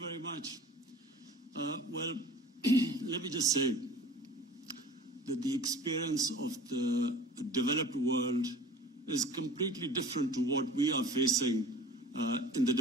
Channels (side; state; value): both; normal; correlation 0.42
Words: much. Well, let me just say that the experience of the developed world is completely different to what we are facing in the